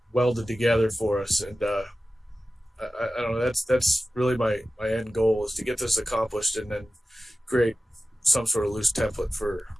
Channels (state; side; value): normal; both; correlation 0.95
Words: welded together for us. And I don't know, that's really my end goal, is to get this accomplished and then create some sort of loose template for